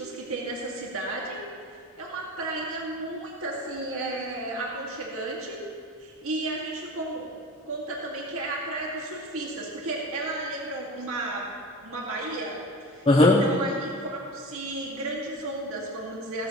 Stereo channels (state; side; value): normal; both; correlation 0.35